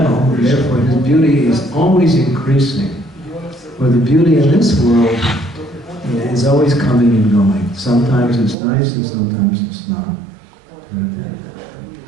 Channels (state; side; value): drops out; left; at 8.6 s